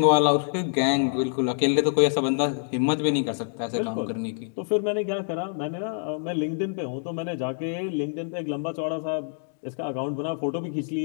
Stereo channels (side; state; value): right; silent; digital silence